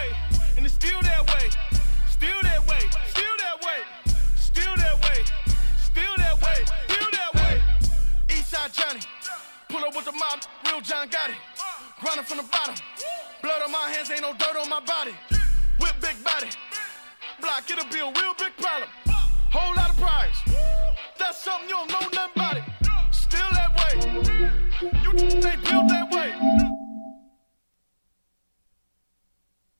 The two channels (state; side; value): inverted; both; correlation -1.00